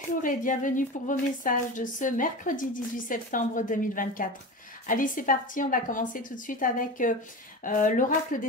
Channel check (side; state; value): both; normal; correlation 0.27